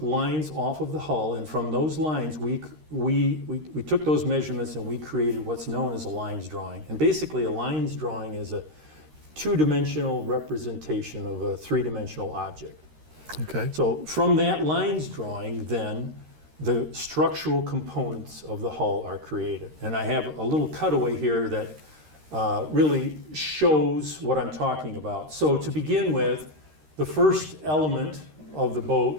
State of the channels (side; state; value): left; late; 13 ms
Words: lines off of the hull, and from those lines, we took those measurements and we created what's known as a lines drawing. And basically, a lines drawing is a two-dimensional representation of a three-dimensional object. Okay. So from that lines drawing, then, the structural components of the hull are created. And I have a little cutaway here that really shows what I'm talking about. So to begin with, the first element of the